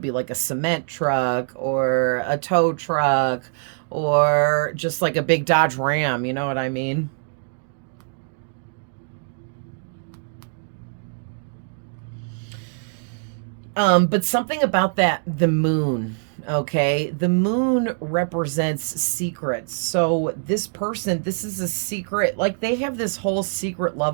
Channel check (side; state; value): left; silent; digital silence